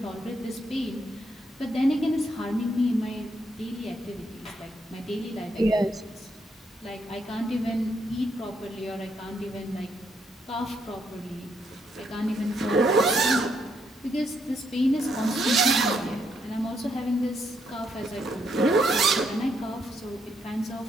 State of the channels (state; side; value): normal; both; correlation 0.75